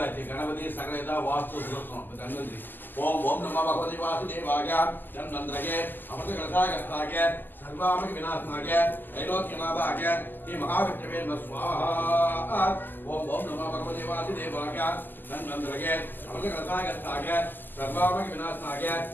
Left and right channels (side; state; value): right; late; 0.090 ms